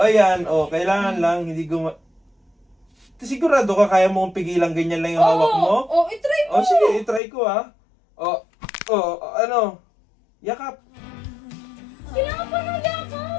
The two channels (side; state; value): right; drops out; at 7.2 s